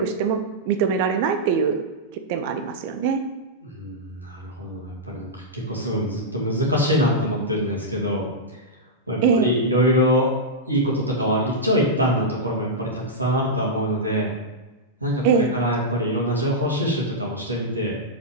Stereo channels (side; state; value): both; normal; correlation -0.10